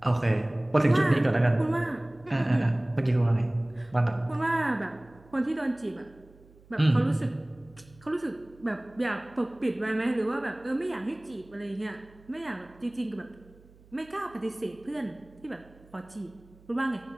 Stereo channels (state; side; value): noise; right; hum, 26 dB below the sound